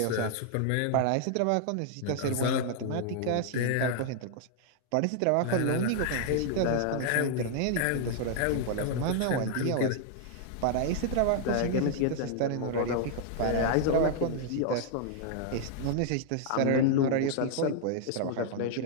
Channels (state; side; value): different; both; correlation 0.00